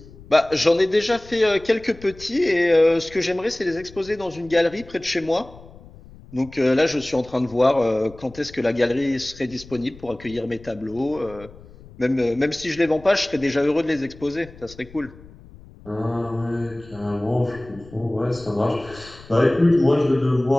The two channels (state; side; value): noise; left; rumble, 21 dB below the sound